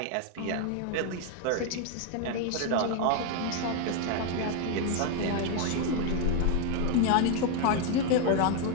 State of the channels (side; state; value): both; different; correlation 0.01